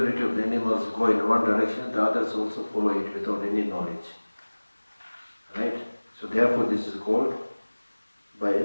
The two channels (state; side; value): inverted; both; correlation -1.00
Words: of the animals go in one direction, the others also follow it without any knowledge. Right? So therefore this is called, by